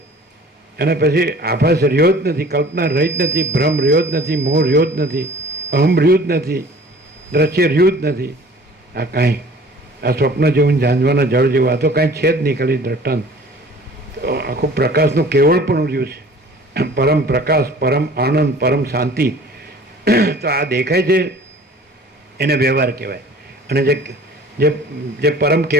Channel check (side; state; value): both; normal; correlation 0.48